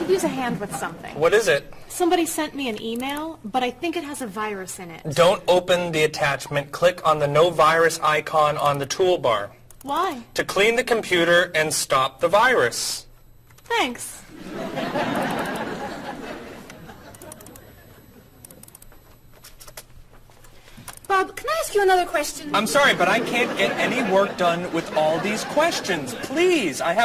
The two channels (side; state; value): both; identical; correlation 1.00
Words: use a hand with something. What is it? Somebody sent me an email, but I think it has a virus in it. Don't open the attachment. Click on the no virus icon on the toolbar. Why? To clean the computer and stop the virus. Thanks. Bob, can I ask you another question? I'm sorry, but I can't get any work done with all these questions. Please, I